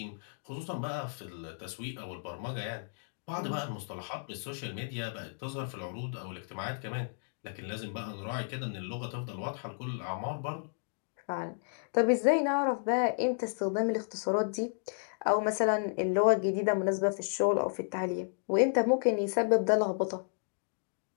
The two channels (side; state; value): right; silent; digital silence